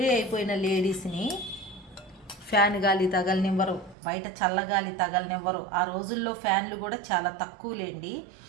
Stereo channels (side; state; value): left; drops out; at 4.0 s